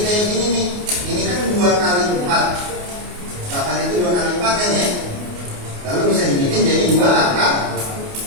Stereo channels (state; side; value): late; left; 28 ms